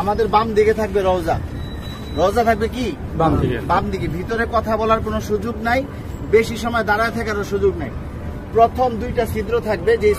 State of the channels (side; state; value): both; identical; correlation 1.00